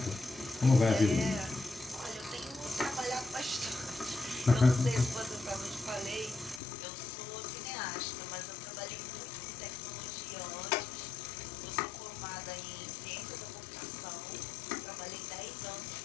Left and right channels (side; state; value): right; drops out; at 6.6 s